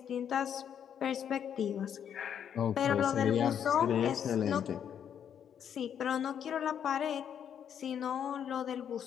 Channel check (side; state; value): right; quieter; 8.7 dB